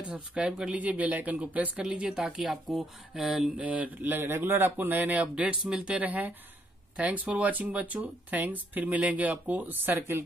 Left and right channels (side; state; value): both; normal; correlation 0.72